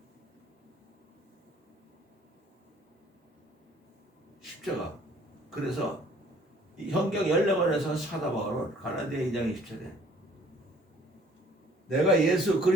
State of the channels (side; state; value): both; normal; correlation 0.56